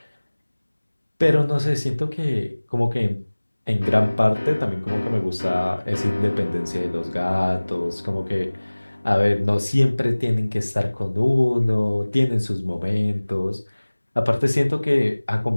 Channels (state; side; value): inverted; both; correlation -1.00